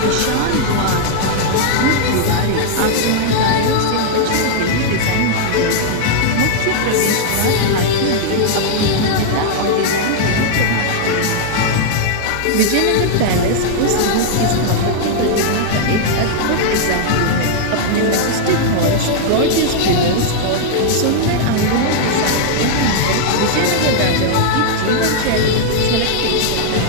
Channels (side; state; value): both; different; correlation -0.01